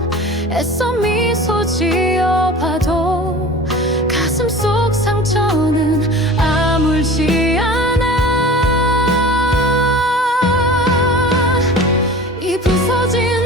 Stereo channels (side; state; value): both; normal; correlation 0.39